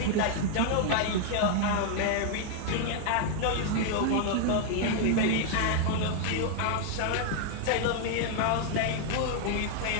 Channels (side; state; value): both; different; correlation 0.00